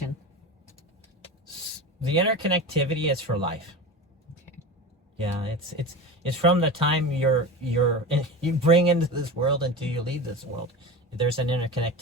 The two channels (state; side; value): normal; both; correlation 0.28